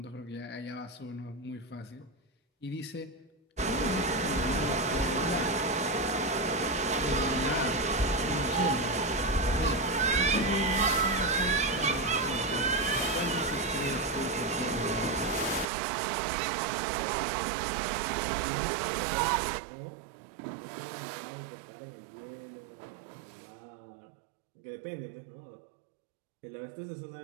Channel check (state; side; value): drops out; left; at 15.7 s